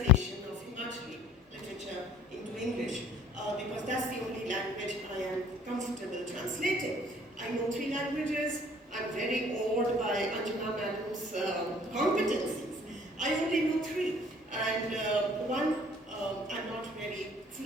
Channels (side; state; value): both; normal; correlation 0.53